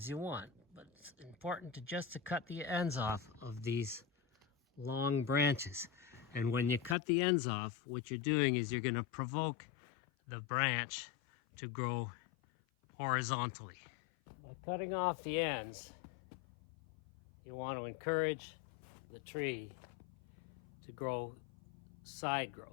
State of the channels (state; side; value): drops out; right; at 7.0 s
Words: you want, but it's important to cut the ends off of these long branches. And when you cut the ends off, what you're doing is you're going to provoke the branch to grow horizontally. By cutting off the ends, you want to encourage the tree to grow side